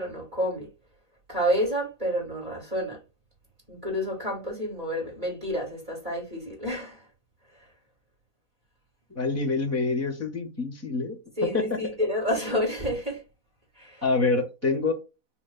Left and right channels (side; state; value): left; late; 4.0 ms